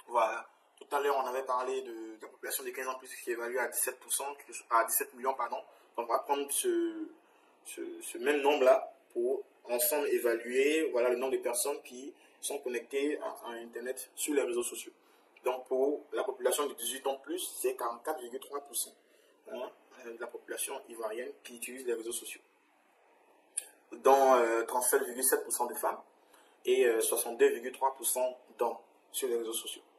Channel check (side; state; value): both; identical; correlation 1.00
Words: Voilà. Tout à l'heure, on avait parlé de la population de 15 ans plus qui est évaluée à 17%, à 17 millions, pardon. Donc, on va prendre ce même nombre-là pour ensemble évaluer, voilà, le nombre de personnes qui sont connectées à Internet sur les réseaux sociaux. Donc, pour la population de 18 ans plus, c'est 44,3%, hein, de la population ivoirienne qui utilise les réseaux sociaux. Dont 37,7% de femmes et 62,3% d'hommes sur les réseaux sociaux.